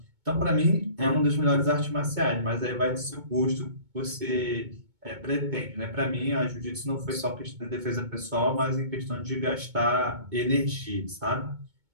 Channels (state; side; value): late; left; 2.2 ms